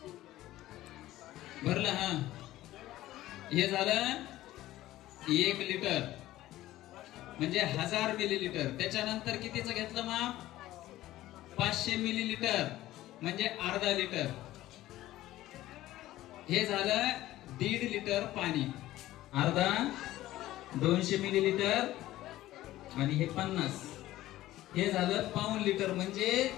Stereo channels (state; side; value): quieter; right; 15.4 dB